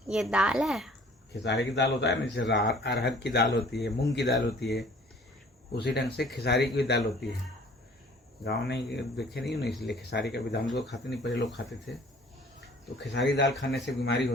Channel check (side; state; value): both; normal; correlation 0.52